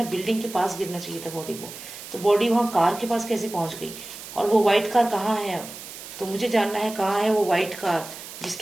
बिल्डिंग के पास गिरना चाहिए था बॉडी को। तो बॉडी वहाँ कार के पास कैसे पहुंच गई, और वो वाइट कार कहाँ है अब। तो मुझे जानना है कहाँ है वो वाइट कार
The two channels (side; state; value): right; noise; hiss, 13 dB below the sound